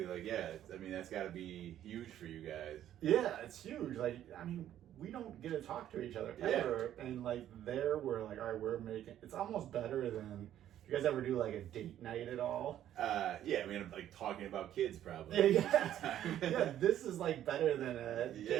Like, I mean, that's got to be huge for you guys. Yeah, it's huge. Like, I mean, we don't get to talk to each other ever. And like there, we're like, all right, it's almost better than. You guys ever do like a date night at all? I mean, I'm like talking about kids probably. Yeah, this is like better than a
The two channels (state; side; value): quieter; left; 11.5 dB